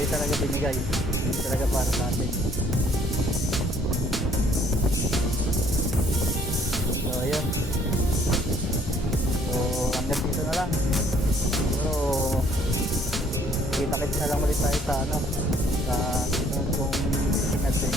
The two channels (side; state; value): both; normal; correlation 0.62